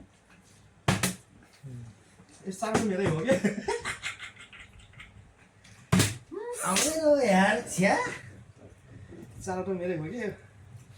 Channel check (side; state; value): both; identical; correlation 1.00